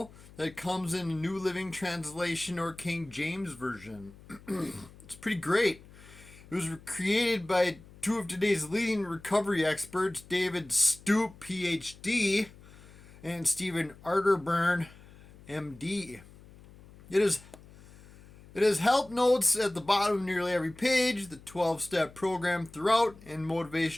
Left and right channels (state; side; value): noise; left; hum, 22 dB below the sound